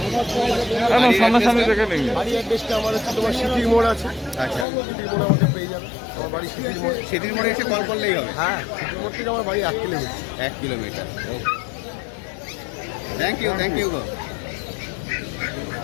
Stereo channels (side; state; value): right; drops out; at 4.7 s